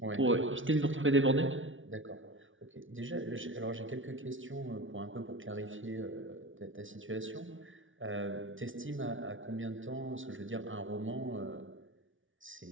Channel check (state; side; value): late; left; 0.57 ms